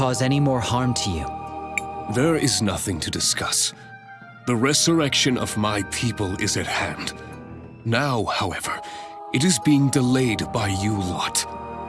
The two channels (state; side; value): identical; both; correlation 1.00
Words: any more harm to you. There is nothing to discuss. The resurrection of my people is at hand. Now, however, it is being delayed by you lot.